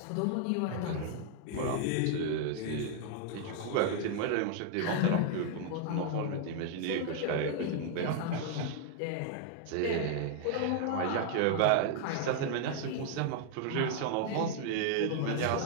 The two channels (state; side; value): different; both; correlation 0.00